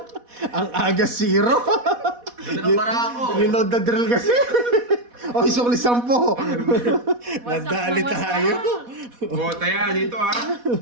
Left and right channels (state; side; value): late; left; 4.1 ms